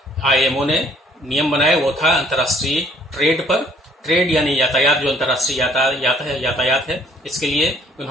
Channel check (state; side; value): normal; both; correlation 0.61